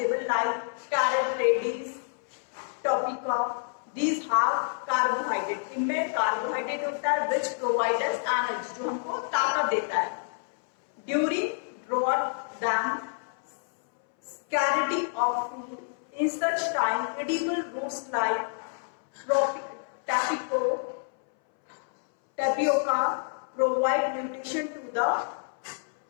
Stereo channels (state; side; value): silent; right; 59 dB below the other